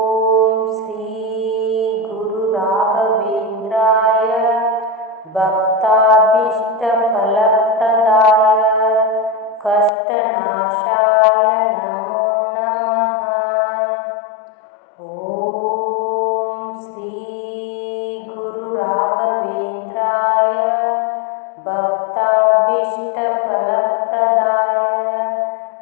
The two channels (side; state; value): right; drops out; at 9.9 s